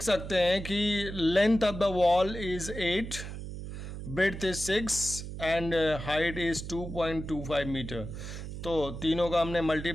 सकते हैं कि length of the wall is 8, breadth is 6 and height is 2.25 metre. तो तीनों का हमने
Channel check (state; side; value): noise; right; hum, 8 dB below the sound